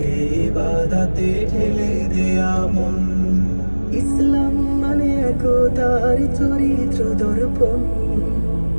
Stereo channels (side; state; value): both; inverted; correlation -1.00